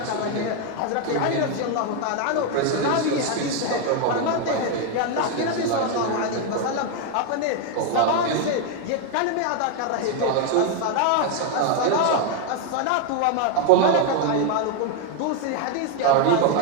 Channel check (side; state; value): both; different; correlation 0.01